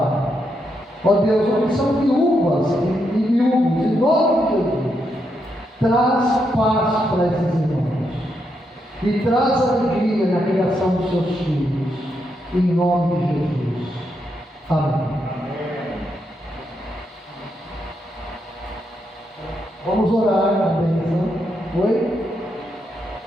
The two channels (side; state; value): both; normal; correlation 0.81